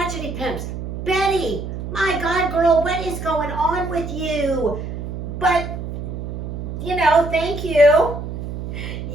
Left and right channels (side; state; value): right; noise; hum, 6 dB below the sound